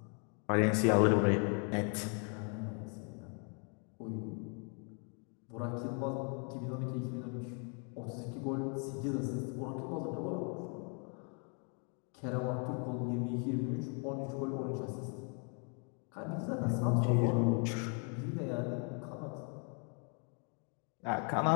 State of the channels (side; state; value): right; quieter; 39.3 dB